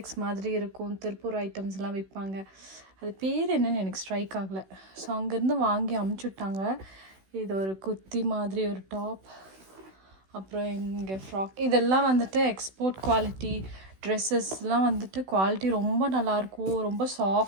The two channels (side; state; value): left; late; 16 ms